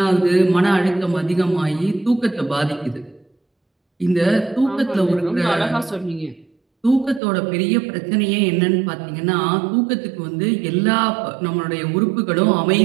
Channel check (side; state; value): left; drops out; at 7.2 s